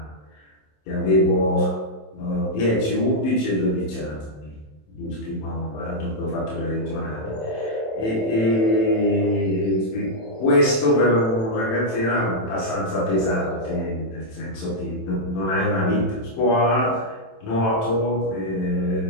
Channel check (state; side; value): late; right; 27 ms